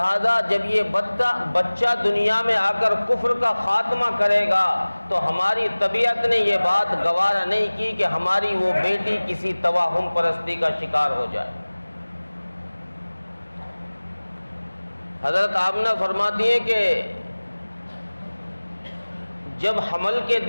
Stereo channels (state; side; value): inverted; both; correlation -1.00